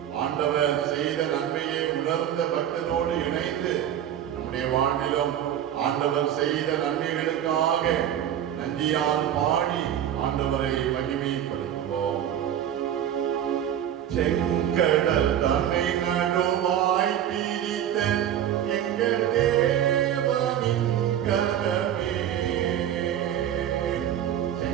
ஆண்டவர் செய்த நன்மையை உணர்ந்த பக்தனோடு இணைந்து நம்முடைய வாழ்விலும் ஆண்டவர் செய்த நன்மைகளுக்காக நன்றியால் பாடி ஆண்டவரை மகிமைப்படுத்துவோம். செங்கடல் தன்னை நடுவாய் பிரித்த எங்கள் தேவனின் கரமே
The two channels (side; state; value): left; quieter; 10.4 dB